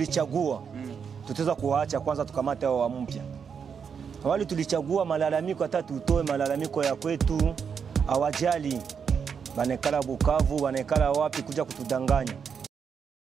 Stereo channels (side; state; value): left; quieter; 6.7 dB